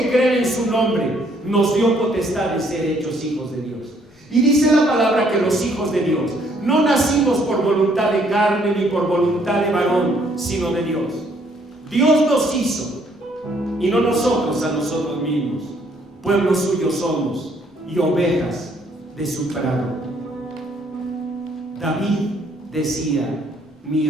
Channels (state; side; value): normal; both; correlation 0.66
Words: creen en su nombre, nos dio potestad de ser hechos hijos de Dios. Y dice la palabra que los hijos de Dios no nacimos por voluntad de carne ni por voluntad de varón, sino de Dios. Dios nos hizo, y no nosotros a nosotros mismos. Pueblo suyo somos y ovejas de su prado. David decía: mi